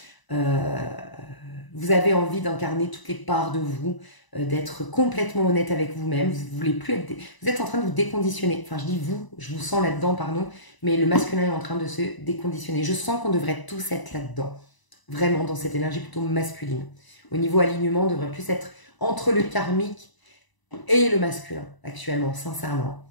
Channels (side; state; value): right; late; 1.0 ms